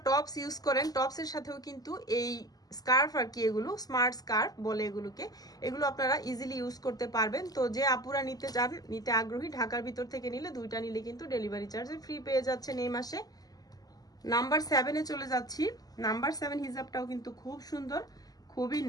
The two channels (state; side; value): late; right; 0.18 ms